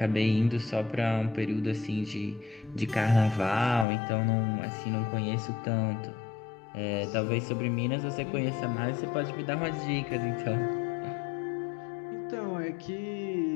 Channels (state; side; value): drops out; right; at 3.9 s